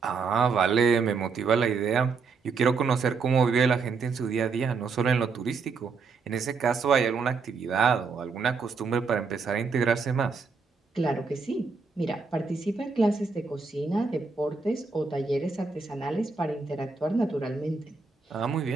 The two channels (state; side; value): quieter; left; 4.9 dB